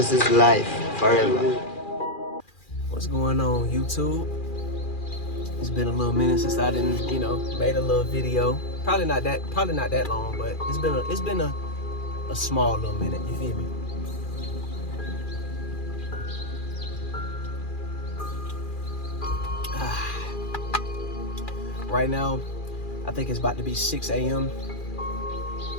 is life, forever. What's going on, YouTube? It's been a little minute since I didn't, made a little video. Probably not that long, but it's been a small little minute. You feel me? Right now, I think it's about to be 6 a.m.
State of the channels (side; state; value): right; late; 2.4 ms